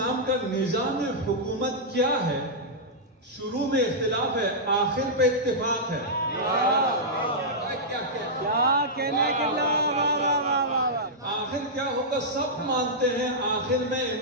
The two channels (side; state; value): both; normal; correlation -0.10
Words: کا نظام حکومت کیا ہے؟ شروع میں اختلاف ہے، آخر پہ اتفاق ہے۔ کیا کہنے کی آخر کیا ہوگا؟ سب مانتے ہیں آخر میں